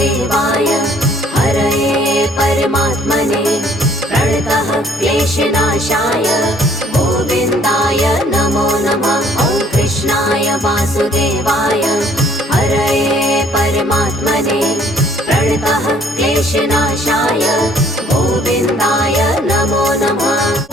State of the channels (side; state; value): both; normal; correlation 0.60